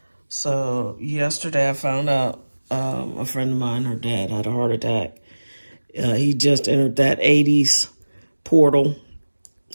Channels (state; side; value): inverted; both; correlation -1.00